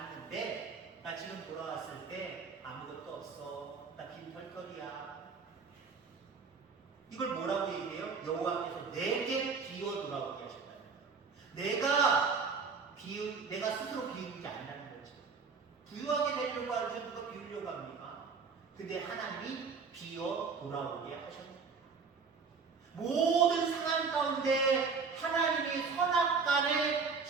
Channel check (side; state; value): left; quieter; 5.1 dB